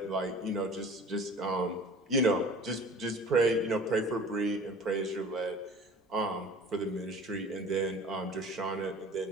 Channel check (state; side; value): normal; both; correlation 0.44